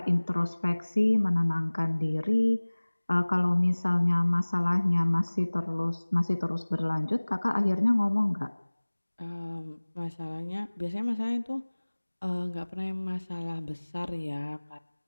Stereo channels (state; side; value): inverted; both; correlation -1.00